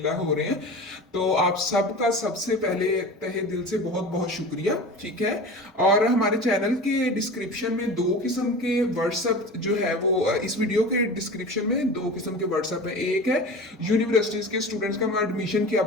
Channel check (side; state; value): both; normal; correlation 0.33